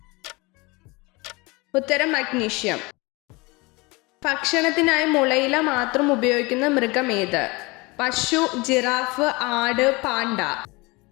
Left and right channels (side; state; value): right; quieter; 25.2 dB